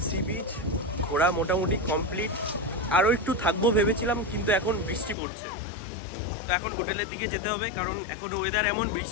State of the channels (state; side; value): drops out; right; at 5.2 s